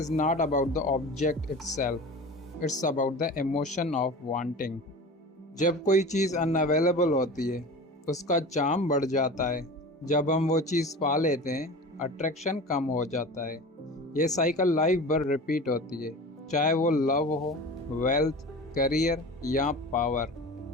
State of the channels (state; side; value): normal; both; correlation 0.35